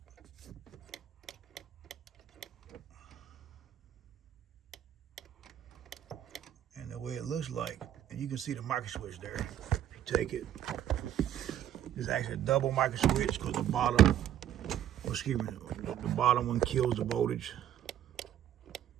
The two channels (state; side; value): quieter; left; 11.2 dB